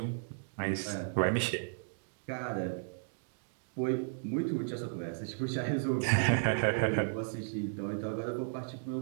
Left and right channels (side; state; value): left; silent; digital silence